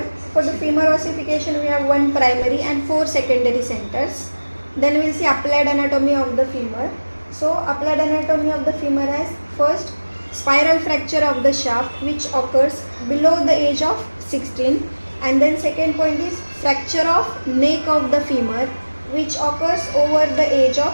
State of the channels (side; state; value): both; inverted; correlation -1.00